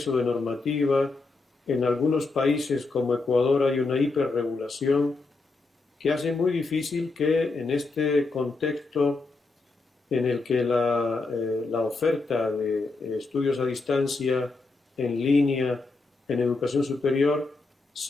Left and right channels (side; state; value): right; quieter; 3.7 dB